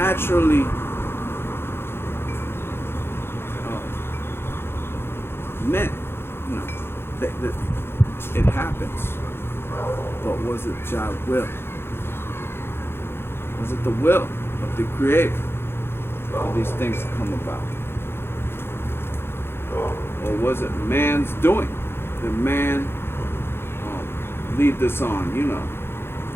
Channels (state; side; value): late; right; 0.11 ms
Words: meant. You know, that it happens. But was it God's will? Was it the will of the Creator for these things to come about? Or was it man's doing? Did man lead this on, you know?